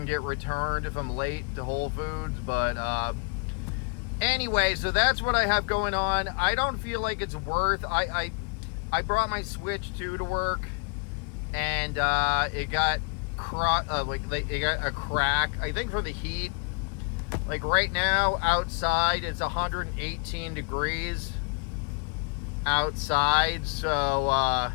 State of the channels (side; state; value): right; quieter; 36.2 dB